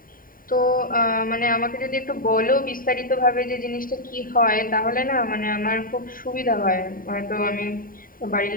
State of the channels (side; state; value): right; late; 0.41 ms